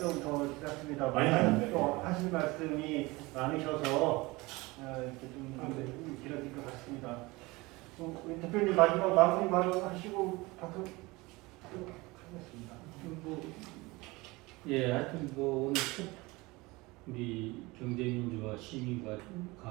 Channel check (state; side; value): quieter; left; 22.8 dB